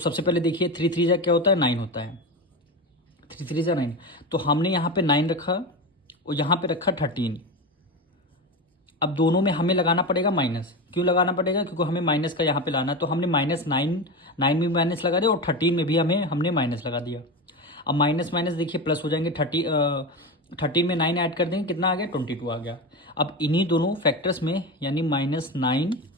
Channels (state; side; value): normal; both; correlation 0.21